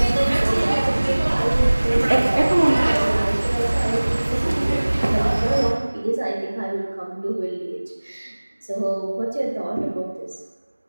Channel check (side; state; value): both; inverted; correlation -1.00